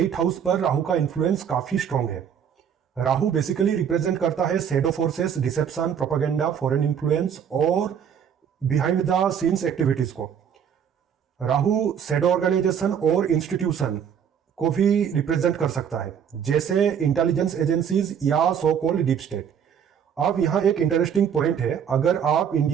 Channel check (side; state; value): left; quieter; 8.1 dB